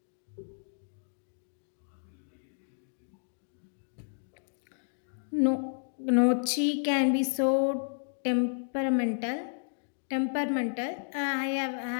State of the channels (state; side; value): silent; right; digital silence